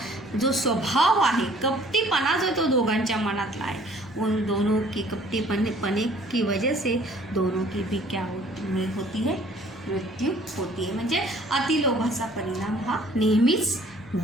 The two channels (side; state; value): both; normal; correlation 0.56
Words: जो स्वभाव आहे, कपटीपणा जो तो दोघांच्या मनातला आहे, उन दोनों की कपटीपने की वजह से दोनों की भी क्या होती है, मृत्यू होती है। म्हणजे अतिलोभाचा परिणाम हा नेहमीच